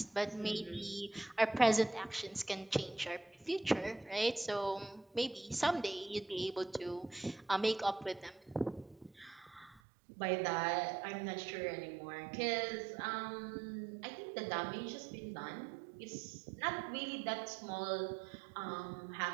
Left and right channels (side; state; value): left; drops out; at 9.8 s